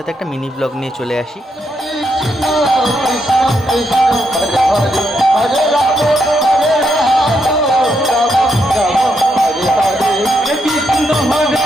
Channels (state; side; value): normal; both; correlation 0.79